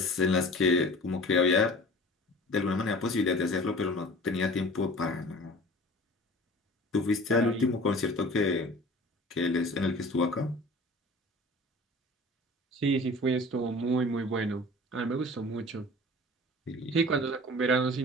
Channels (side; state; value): both; normal; correlation 0.43